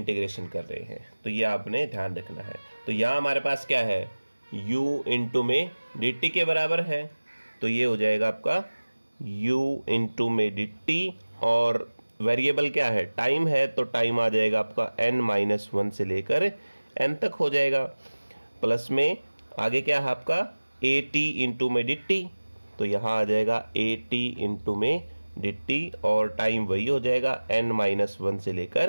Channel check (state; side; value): inverted; both; correlation -1.00